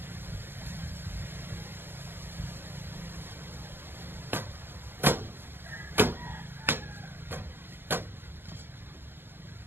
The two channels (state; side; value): late; left; 0.10 ms